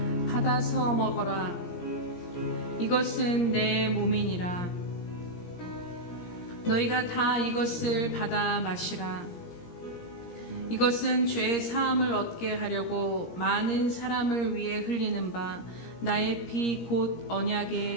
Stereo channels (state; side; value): late; right; 17 ms